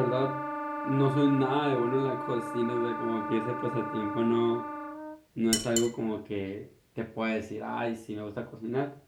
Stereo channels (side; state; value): both; identical; correlation 1.00